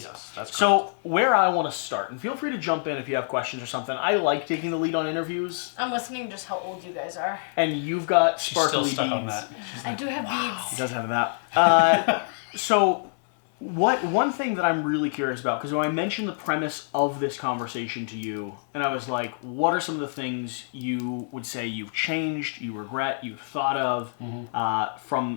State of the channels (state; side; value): silent; right; 61 dB below the other